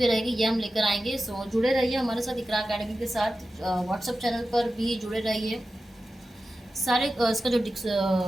रहेगी, ये हम लेकर आएंगे। सो जुड़े रहिए हमारे साथ इकरा अकेडमी के साथ, व्हाट्सएप चैनल पर भी जुड़े रहिए। सारे इसका जो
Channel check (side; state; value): both; normal; correlation 0.93